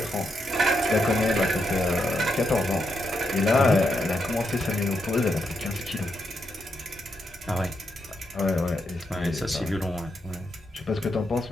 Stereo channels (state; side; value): normal; both; correlation 0.82